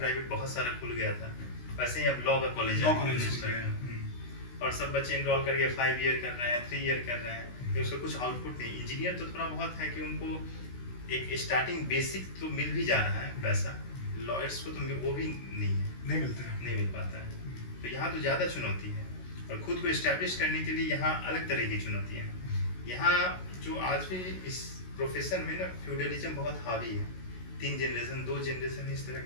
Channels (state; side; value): late; right; 16 ms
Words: बहुत सारा खुल गया था, वैसे ही अब लॉ का कॉलेज और सब बच्चे इनरोल करके 5 ईयर कर रहे हैं, 3 ईयर कर रहे हैं, तो उसका कुछ आउटपुट नहीं। इंजीनियर तो थोड़ा बहुत है कि उनको एक स्टार्टिंग बेसिक तो मिल भी जा रहा है पैसा, लॉयर्स को तो वो भी नहीं मिल पाता है। तो यहाँ तो ज़्यादा चुनौती है, और खुद को इस्टेब्लिश करने के लिए यहाँ अलग तरह की चुनौतियाँ हैं। यहाँ जो आज भी इस प्रोफेशन में ना फ्यूडलिज्म बहुत हावी है, 3 जनरेशन 2 जनरेशन इस तरह,